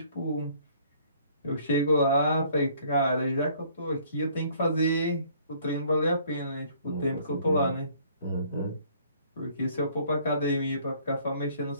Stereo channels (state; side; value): inverted; both; correlation -0.59